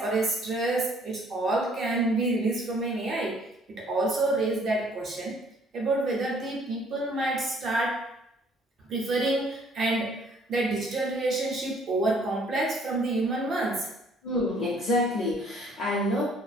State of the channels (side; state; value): both; normal; correlation 0.60